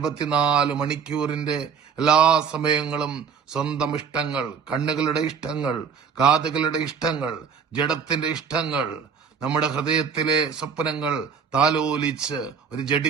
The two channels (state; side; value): quieter; left; 6.5 dB